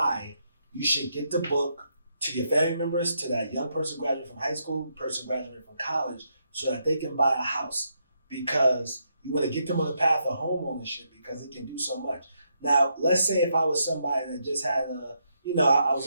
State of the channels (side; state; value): both; inverted; correlation -0.79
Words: you should get the book to your family members, to that young person graduating from high school, person graduating from college, so that they can buy a house, because you want to get them on the path of home ownership because it can do so much. Now, let's say if I was somebody that just had I was